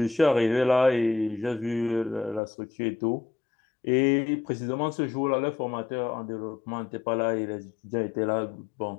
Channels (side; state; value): right; drops out; at 2.4 s